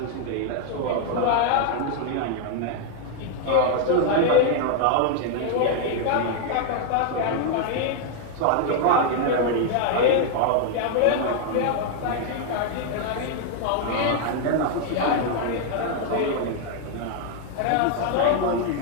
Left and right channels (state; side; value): different; both; correlation 0.00